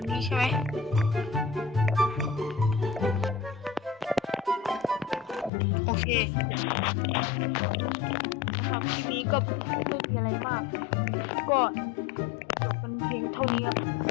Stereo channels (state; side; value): drops out; right; at 5.5 s